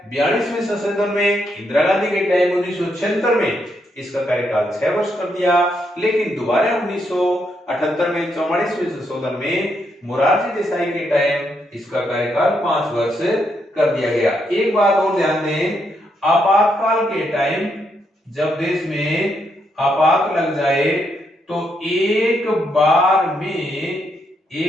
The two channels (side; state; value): both; normal; correlation 0.78